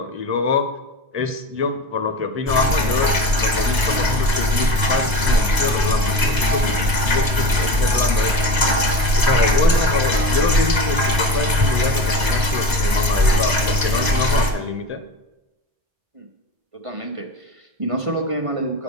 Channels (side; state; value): left; late; 1.0 ms